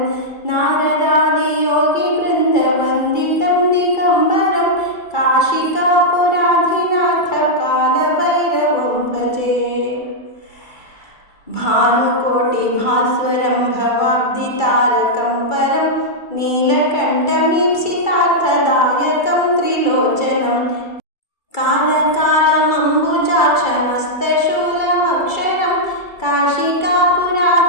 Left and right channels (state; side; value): late; right; 2.3 ms